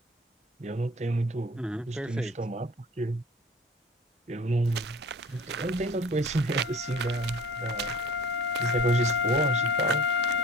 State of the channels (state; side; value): normal; both; correlation 0.44